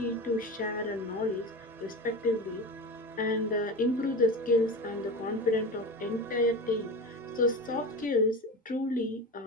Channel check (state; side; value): normal; both; correlation 0.27